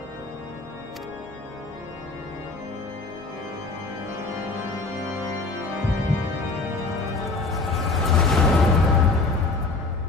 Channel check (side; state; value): right; quieter; 3.6 dB